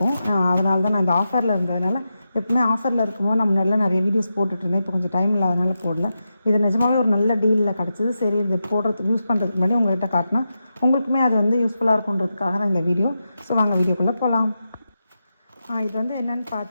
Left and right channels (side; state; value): both; inverted; correlation -0.89